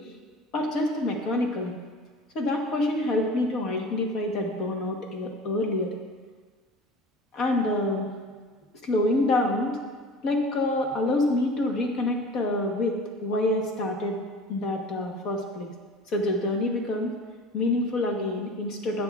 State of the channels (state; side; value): normal; both; correlation 0.40